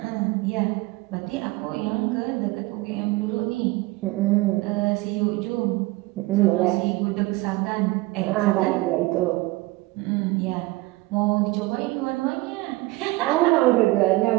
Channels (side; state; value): left; quieter; 20.8 dB